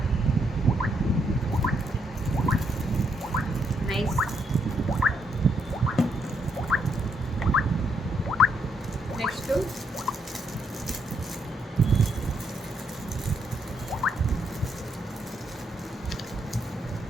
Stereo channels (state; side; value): normal; both; correlation 0.76